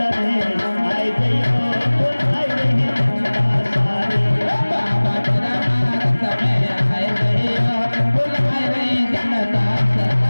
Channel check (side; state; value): both; inverted; correlation -1.00